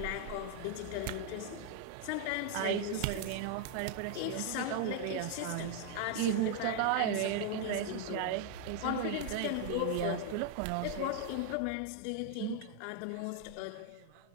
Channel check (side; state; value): both; different; correlation 0.00